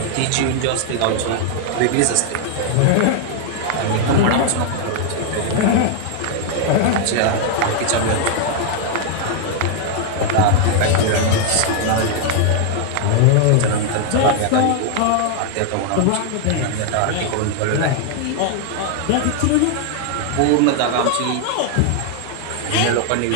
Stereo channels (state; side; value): different; both; correlation 0.00